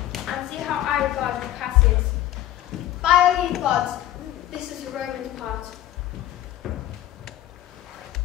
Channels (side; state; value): right; quieter; 13.4 dB